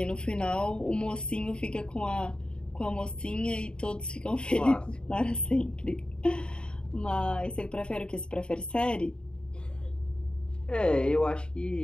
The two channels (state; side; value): late; right; 0.051 ms